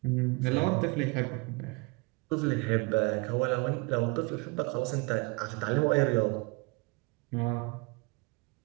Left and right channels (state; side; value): quieter; left; 28.1 dB